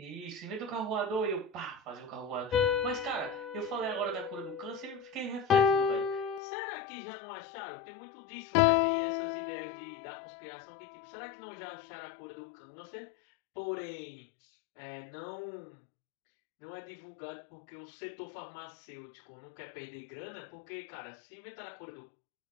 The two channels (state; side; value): drops out; right; at 6.4 s